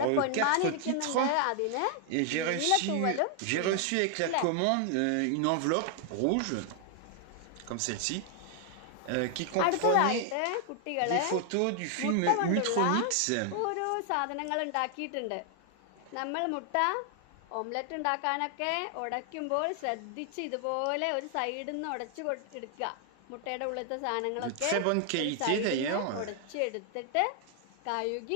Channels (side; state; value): both; different; correlation 0.00